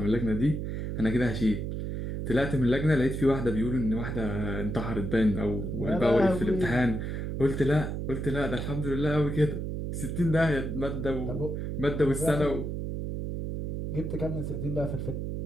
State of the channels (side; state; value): right; noise; hum, 4 dB below the sound